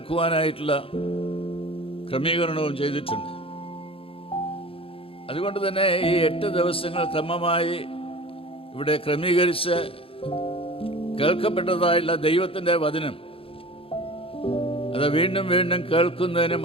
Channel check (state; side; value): late; right; 0.27 ms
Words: ക്രമീകരണവും ചെയ്തിട്ടുണ്ട്. അതുകൊണ്ട് തന്നെ ഈ 8 ദിവസങ്ങൾ ക്രമമായി ഇവിടെ ക്രമീകരിച്ച് കേൾക്കപ്പെട്ടതായുള്ള ദൈവത്തിൻ്റെ വചനം അത് വീണ്ടും വീണ്ടും കേൾക്കുന്നതിനും